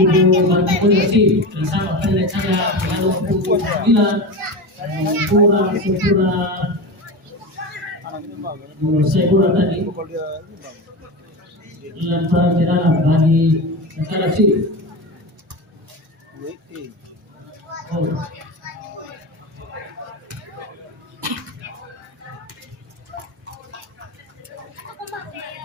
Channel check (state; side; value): normal; both; correlation 0.23